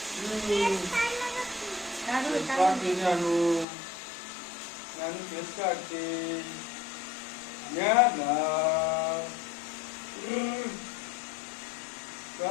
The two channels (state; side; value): drops out; right; at 3.7 s